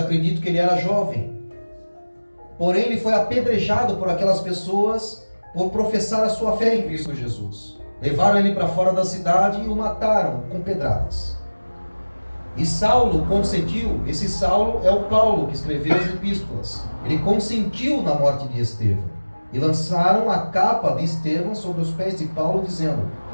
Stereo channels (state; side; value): inverted; both; correlation -1.00